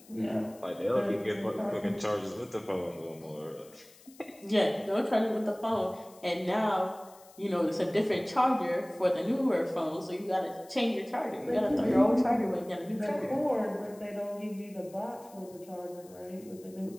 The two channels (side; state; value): left; noise; hiss, 24 dB below the sound